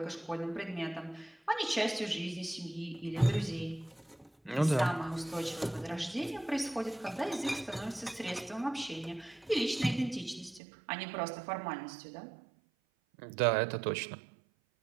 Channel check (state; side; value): drops out; left; at 10.6 s